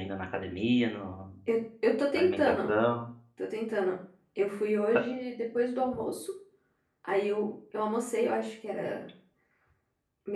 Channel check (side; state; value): both; identical; correlation 1.00